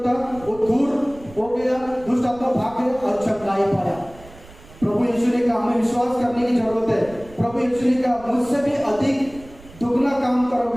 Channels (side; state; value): right; noise; rumble, 21 dB below the sound